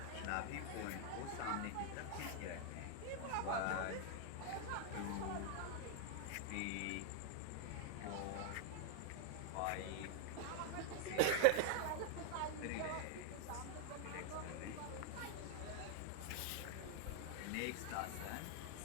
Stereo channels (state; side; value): different; both; correlation 0.00